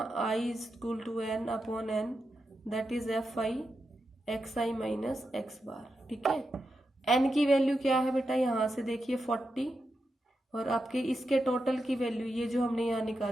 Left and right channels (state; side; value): normal; both; correlation 0.88